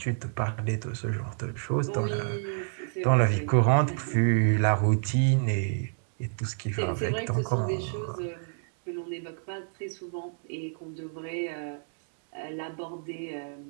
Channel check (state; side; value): silent; left; digital silence